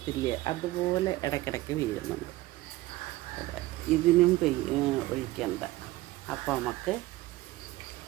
അതുപോലെ ഇടയ്ക്കിടയ്ക്ക് വീഴുന്നുണ്ട്. ഇതിനും ഒഴിക്കണ്ട. അപ്പോൾ നമുക്ക്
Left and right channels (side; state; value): left; quieter; 18.0 dB